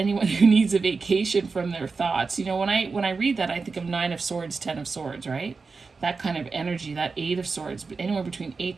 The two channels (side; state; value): left; quieter; 4.5 dB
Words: who needs a vacation from their thoughts. When I read that, I think of 9 of Swords, 10 of Swords, right? That kind of energy, that 8 of Swords, but anywhere between 8